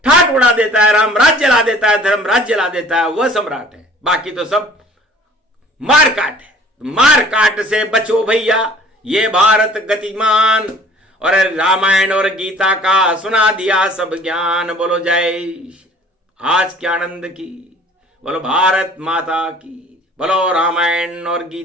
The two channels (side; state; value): both; normal; correlation 0.51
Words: ठाट उड़ा देता है, राम राज्य ला देता है, धर्म राज्य ला देता है, वह सम्राट है। बाकी तो सब मारकाट है। मारकाट से बचो भैया, ये भारत गतिमान, और रामायण और गीता का सुना दिया सब ज्ञान। बोलो जय आज के आनंद की, बोलो भारत माता की, बोलो रामायण और